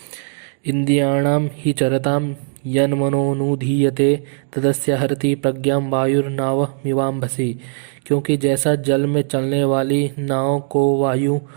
इंद्रियाणाम ही चरताम यन्मनोनुधीयते तदस्य हरति प्रज्ञां वायुर्नाव मिवाम्भसि। क्योंकि जैसा जल में चलने वाली नाव को वायु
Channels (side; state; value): left; silent; digital silence